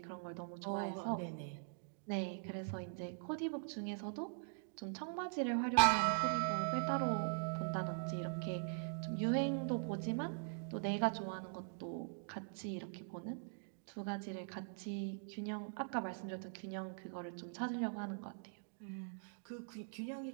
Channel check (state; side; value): silent; left; digital silence